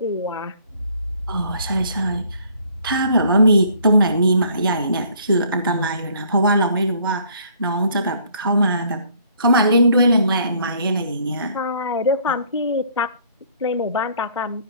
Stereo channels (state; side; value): inverted; both; correlation -0.60